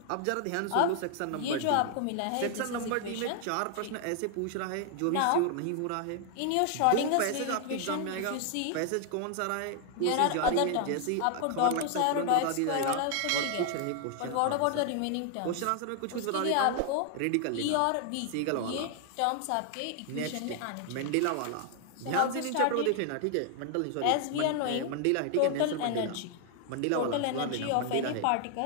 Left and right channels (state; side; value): different; both; correlation 0.00